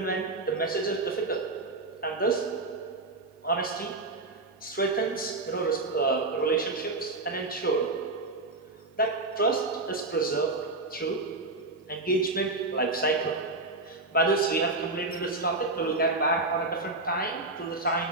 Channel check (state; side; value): quieter; left; 3.1 dB